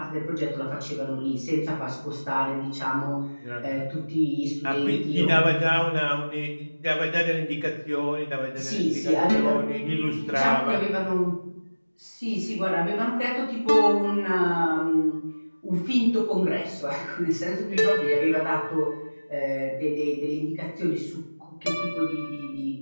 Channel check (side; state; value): both; inverted; correlation -1.00